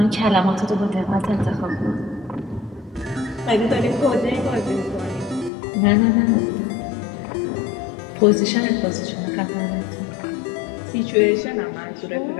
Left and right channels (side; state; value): right; drops out; at 5.5 s